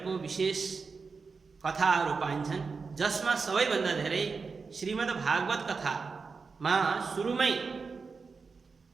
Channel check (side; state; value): left; quieter; 4.8 dB